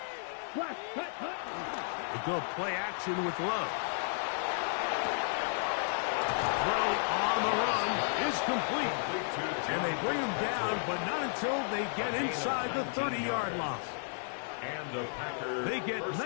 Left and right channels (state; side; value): silent; right; 56 dB below the other